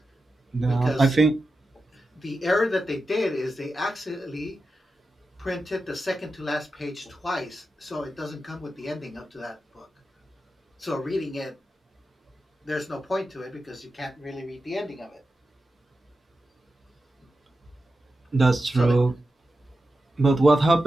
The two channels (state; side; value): normal; both; correlation 0.91